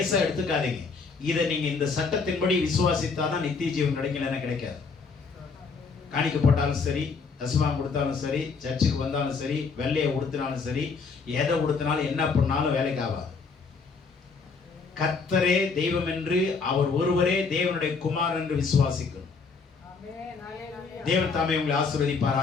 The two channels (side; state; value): right; quieter; 4.9 dB